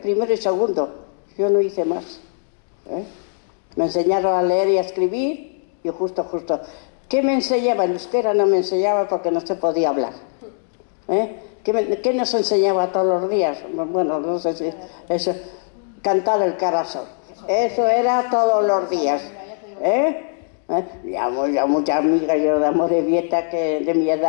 primero y segundo, yo no hice más. Me enseñaron a leer y a escribir y justo. ¿Qué me enseñaba? En euskera no me enseñaba porque no se podía hablar. ¿Qué nos enseñaba todos los días? Bueno, no sé si eso, cantar el carasol. Eso era todos los días. Ya muchas amigas yo de Amorebieta que de mi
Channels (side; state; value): right; silent; digital silence